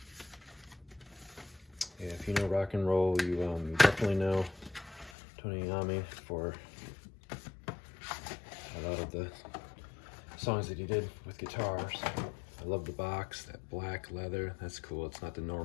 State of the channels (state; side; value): drops out; right; at 5.1 s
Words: Yeah, if you know rock and roll, you definitely know Tony Iommi for a lot of the songs that he did with guitars. I love the box, that black leather. That's cool. It's not the